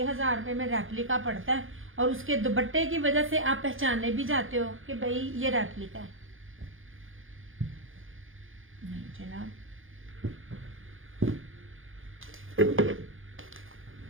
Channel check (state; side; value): late; left; 0.59 ms